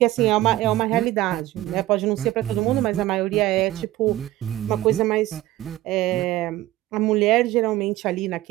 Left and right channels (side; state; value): left; quieter; 15.9 dB